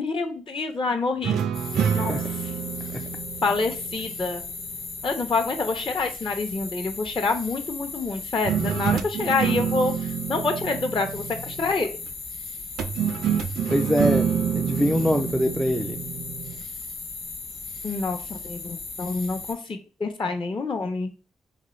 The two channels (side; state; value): both; normal; correlation 0.69